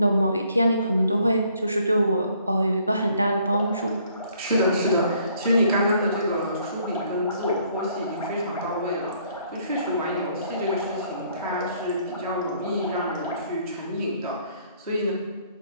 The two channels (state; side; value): inverted; both; correlation -0.64